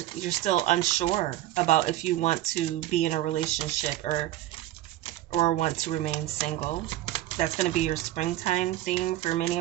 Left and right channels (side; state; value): left; quieter; 14.5 dB